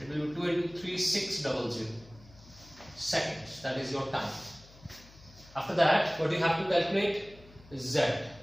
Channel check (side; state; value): left; noise; hum, 22 dB below the sound